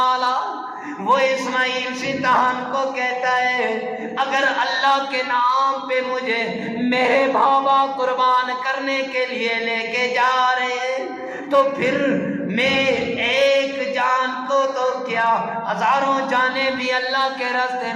اعلیٰ. وہ اسماعیل شیطان کو کہتا ہے اگر اللہ کے نام پہ مجھے میرے بابا قربان کرنے کے لیے لے کے جا رہے ہیں تو پھر میں ایک جان کو تو کیا ہزاروں جانیں بھی اللہ کے راستے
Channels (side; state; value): both; identical; correlation 1.00